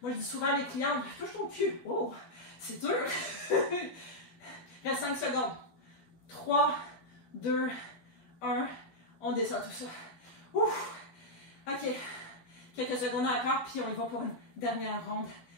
Moi, je dis souvent à mes clientes, touche ton cul. Oh, c'est dur. Il reste 5 secondes. 3, 2, 1. On descend tout ça. Ouf! OK. Quelques secondes encore, puis on y va pour une dernière ronde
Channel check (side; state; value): right; late; 12 ms